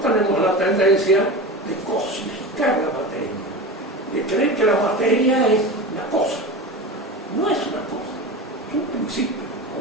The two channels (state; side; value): normal; both; correlation 0.27